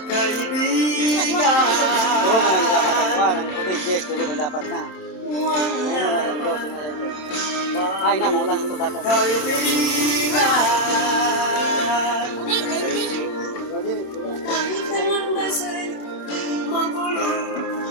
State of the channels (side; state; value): right; late; 27 ms